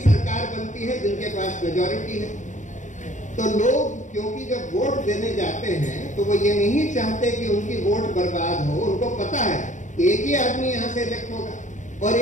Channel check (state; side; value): late; right; 0.36 ms